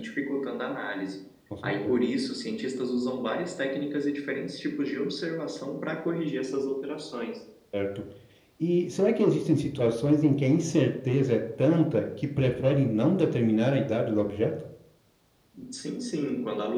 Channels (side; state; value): both; identical; correlation 1.00